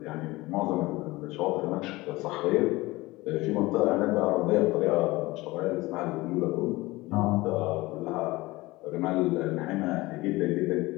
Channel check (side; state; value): right; quieter; 20.5 dB